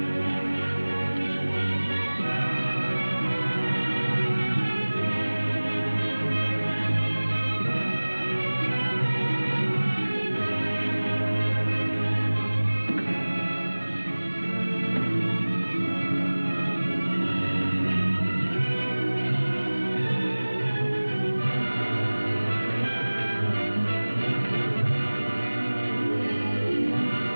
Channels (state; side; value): inverted; both; correlation -1.00